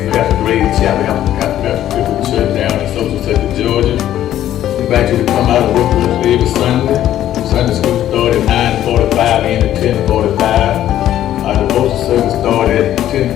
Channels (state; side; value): quieter; right; 12.1 dB